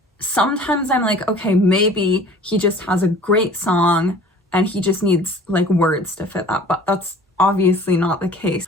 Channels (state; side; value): normal; both; correlation 0.47